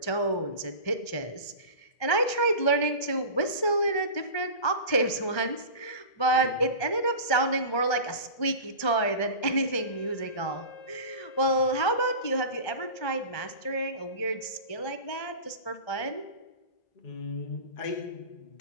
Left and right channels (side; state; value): right; late; 1.3 ms